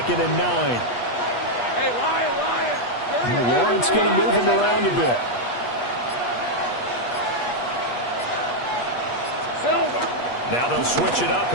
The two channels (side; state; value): right; late; 8.3 ms